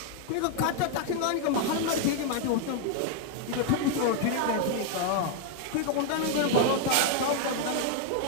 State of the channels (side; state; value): both; different; correlation 0.00